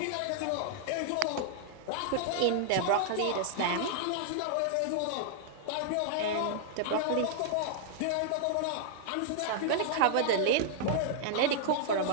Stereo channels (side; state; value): both; different; correlation -0.01